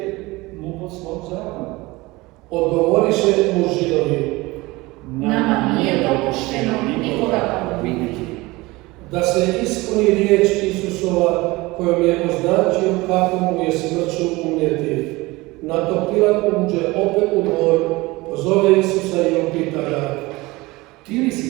mu po svom zakonu. Odgovoriše mu Židovi. Nama nije dopušteno nikoga pogubiti. Da se ispuni riječ Isusova kojom je označio kako mu je smrću umrijeti. Na to Pilat uđe opet u dvor, pozove Isusa i upita ga. Ti li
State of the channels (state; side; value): quieter; left; 21.6 dB